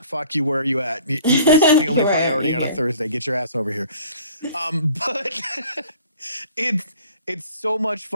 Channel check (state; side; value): inverted; both; correlation -0.50